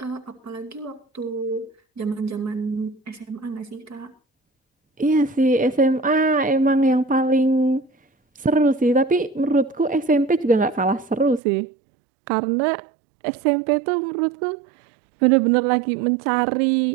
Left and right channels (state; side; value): drops out; left; at 11.4 s